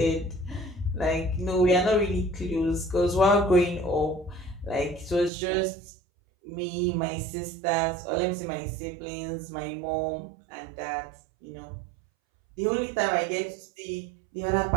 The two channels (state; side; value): drops out; left; at 5.3 s